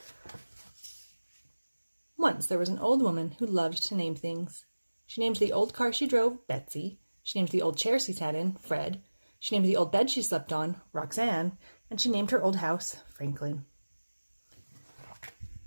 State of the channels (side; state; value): both; inverted; correlation -1.00